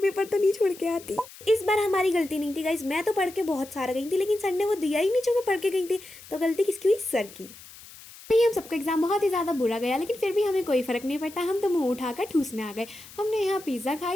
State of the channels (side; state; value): left; noise; hiss, 19 dB below the sound